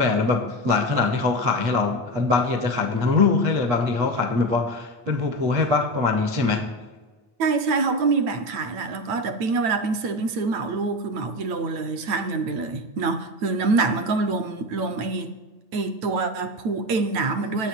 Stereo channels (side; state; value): left; late; 9.0 ms